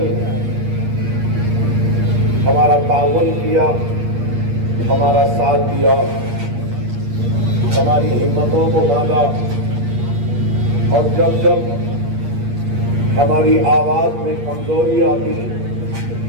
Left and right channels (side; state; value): left; late; 8.5 ms